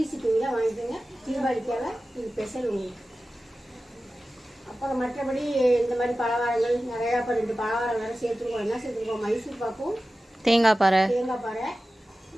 ஷிப்பிங்கில் வாங்கிக்கோங்க. தீபாவளிக்காக இது ஸ்பெஷல் உங்களுக்கு. அப்புறம் மற்றபடி இந்த மாதிரி பலகாரங்கள் நிறையா, இப்போ 2 பலகாரம் வேறு சேர்த்துருக்கோம். என்ன சேர்த்துருக்கோம்? மைசூர் பாக்கும், தேங்காய் பாறை,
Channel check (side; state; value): both; normal; correlation 0.95